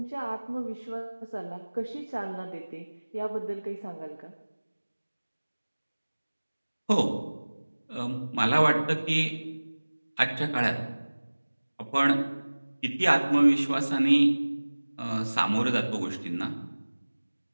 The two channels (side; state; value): both; inverted; correlation -1.00